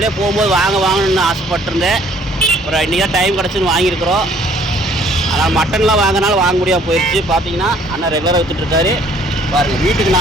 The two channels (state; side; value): normal; both; correlation 0.60